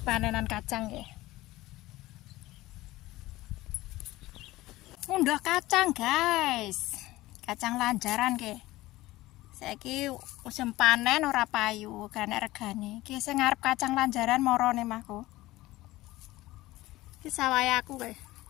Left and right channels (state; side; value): quieter; right; 18.0 dB